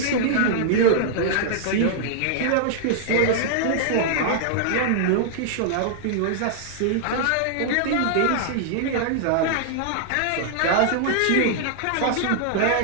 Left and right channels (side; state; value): both; different; correlation -0.01